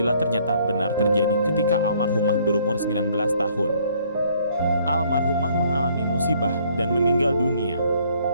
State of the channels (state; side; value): inverted; both; correlation -0.63